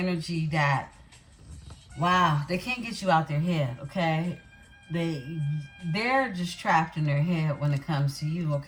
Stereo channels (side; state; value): both; identical; correlation 1.00